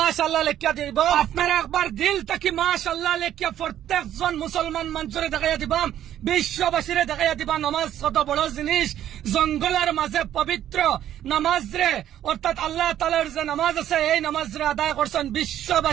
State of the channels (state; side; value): quieter; left; 11.4 dB